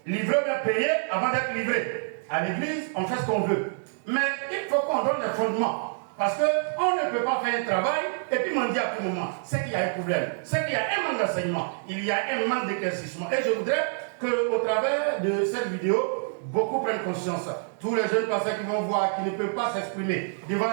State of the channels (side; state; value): left; silent; digital silence